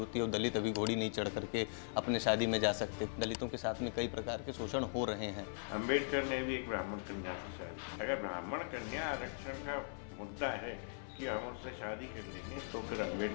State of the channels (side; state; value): right; silent; 51 dB below the other